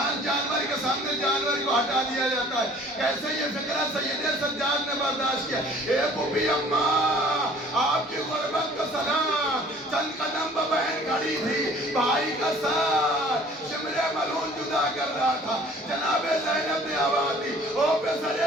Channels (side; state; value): both; normal; correlation 0.52